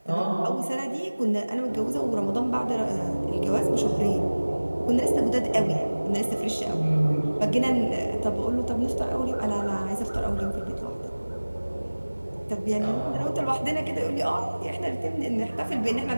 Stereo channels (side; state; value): both; inverted; correlation -1.00